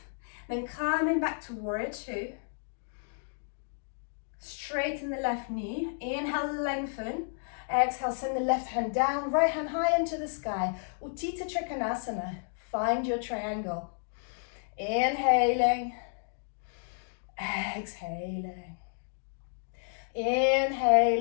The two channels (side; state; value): right; silent; digital silence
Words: then coming back to warrior two. Straighten the left knee. Inhale, lengthen. Exhale, send the left hand down, right hand high into the sky. Utthita Trikonasana. Find your triangle. Inhaling. Exhaling.